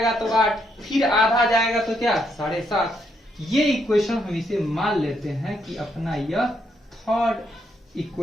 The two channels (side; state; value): both; normal; correlation 0.76